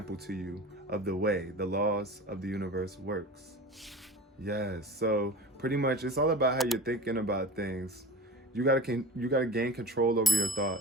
to you of the way the laws of the universe works. Yes, so pretty much it's all about how you're thinking about things. You gotta gain control over your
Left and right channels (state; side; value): normal; both; correlation 0.34